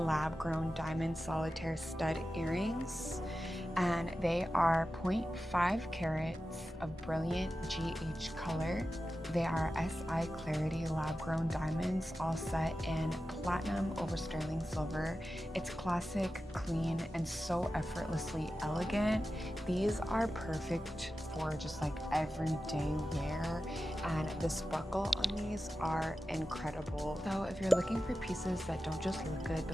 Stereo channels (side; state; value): both; normal; correlation 0.93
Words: diamond solitaire stud earrings, and they are 0.5 carats of brilliant GH color. They are SI Clarity lab-grown diamonds, all set in platinum over sterling silver. It's classic, clean, and so effortlessly elegant. These are perfect for just like everyday wear, and the sparkle on these are incredible. So if you're looking for pieces that don't just look good